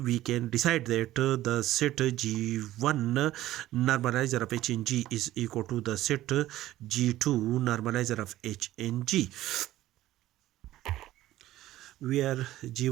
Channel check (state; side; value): quieter; left; 14.9 dB